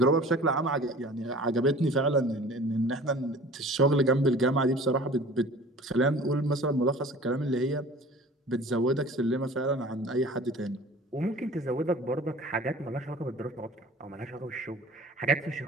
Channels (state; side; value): normal; both; correlation 0.44